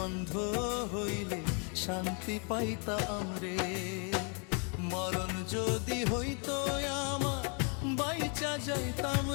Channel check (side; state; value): right; quieter; 38.2 dB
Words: অন্ধ হইলে শান্তি পাইতাম রে। মরণ যদি হইতো আমার বাইচা যাইতাম